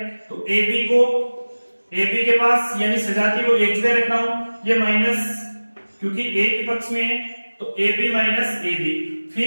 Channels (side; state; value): both; inverted; correlation -1.00